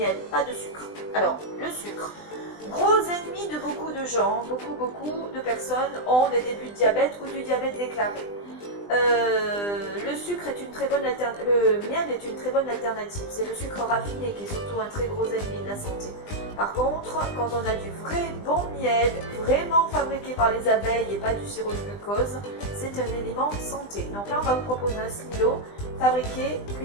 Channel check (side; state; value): right; late; 20 ms